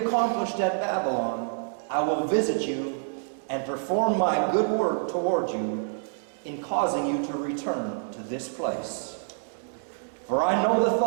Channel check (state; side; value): silent; left; digital silence